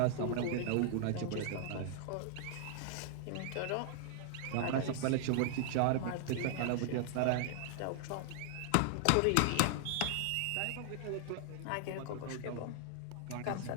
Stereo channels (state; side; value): different; both; correlation 0.00